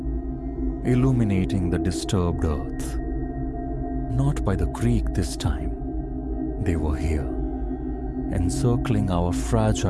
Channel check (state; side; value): identical; both; correlation 1.00